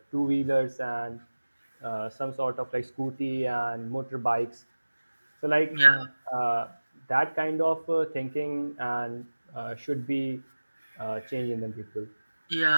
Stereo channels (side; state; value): both; inverted; correlation -1.00